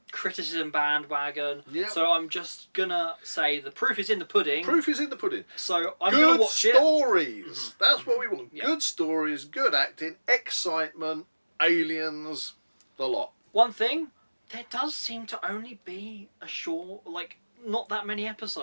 criticism bandwagon. Yeah. So I'm just gonna say the proof is in the pudding. Proof is in the pudding. So I'm good gonna watch it. stories. That's what we want. Yeah. Good stories, good acting, excitement, aliens, the lot. One thing, there does seem to only be a short, not that many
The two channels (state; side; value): inverted; both; correlation -1.00